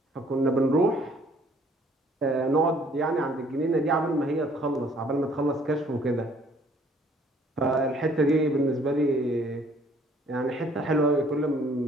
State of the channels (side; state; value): both; normal; correlation 0.60